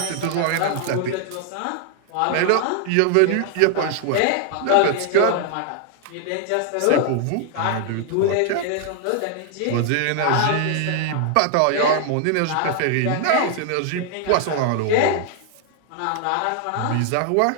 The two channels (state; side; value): different; both; correlation 0.00